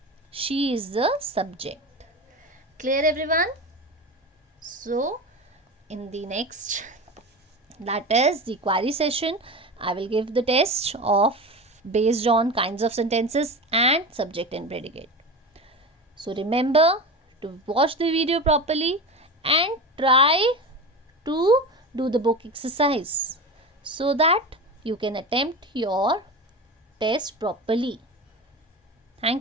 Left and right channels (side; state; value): both; normal; correlation 0.27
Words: She is the subject. Clear, everyone? So in the next, that is the query session, I will give the test of based on kinds of sentences and subject and predicate. So remember to watch the video properly and try to do the book exercise so that you can attempt your test properly.